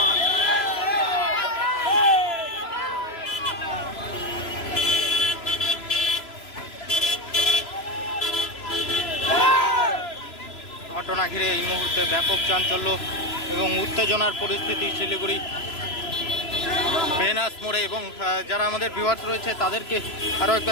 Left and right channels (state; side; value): late; right; 3.0 ms